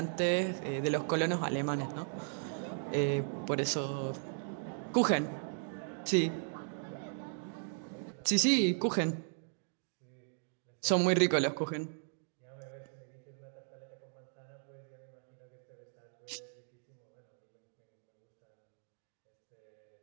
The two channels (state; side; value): silent; left; digital silence